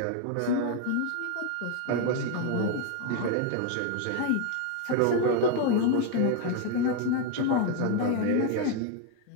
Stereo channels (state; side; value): different; both; correlation 0.01